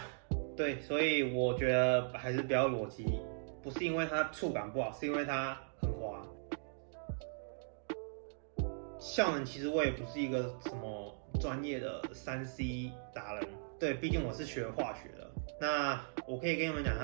对，所以我觉得还是不要裸机。不是因为它触感不好，是因为它很滑。效能其实我也不是一个什么专业的3C 达人，对，毕竟我是学化学的。那我可以跟你们讲，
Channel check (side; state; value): left; silent; digital silence